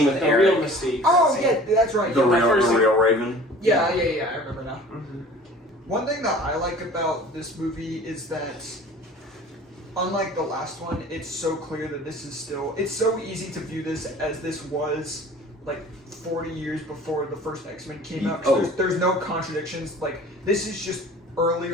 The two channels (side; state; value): both; normal; correlation 0.45